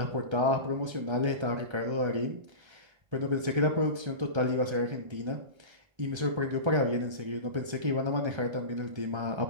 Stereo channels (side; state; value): left; late; 1.3 ms